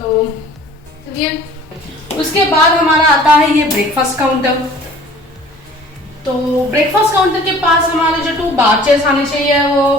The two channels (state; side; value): normal; both; correlation 0.49